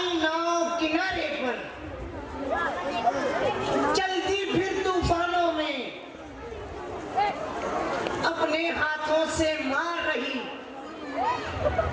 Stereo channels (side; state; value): both; identical; correlation 1.00